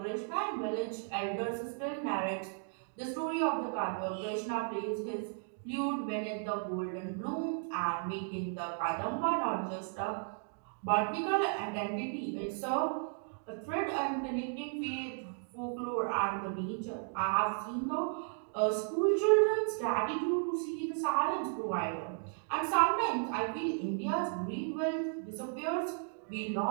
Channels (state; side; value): silent; left; 55 dB below the other